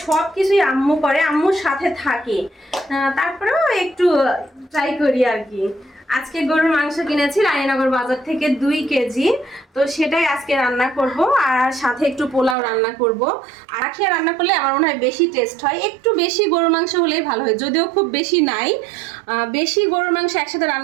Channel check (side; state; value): left; drops out; at 12.6 s